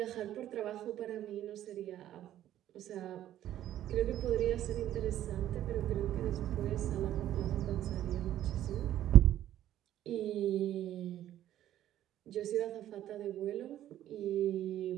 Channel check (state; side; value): quieter; left; 12.3 dB